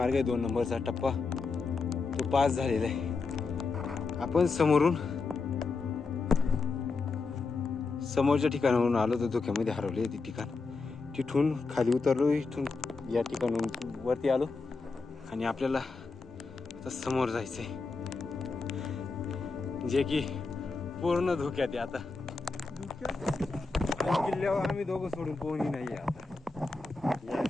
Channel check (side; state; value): right; quieter; 4.2 dB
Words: आहे 2 नंबरचा टप्पा तो पास झालेला आहे. आपण समोरच्या ठिकाणावरून आलो तर धुक्यामध्ये हरवले ते ठिकाण. तिथून खाली उतरलो, इथून या ठिकाणाहून वरती आलो आणि आपल्याला आता समोर जायचं आहे, जे की पूर्ण धोक्यात आहे. आता किल्ल्यावर आम्ही दोघं सोडून कोणी नाही आहे आता या